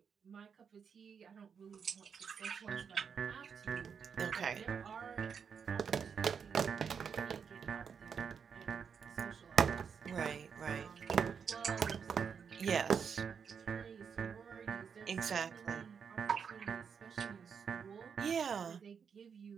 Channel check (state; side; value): quieter; left; 6.7 dB